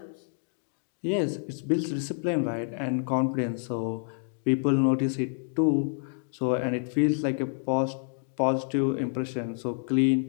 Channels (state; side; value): silent; right; 59 dB below the other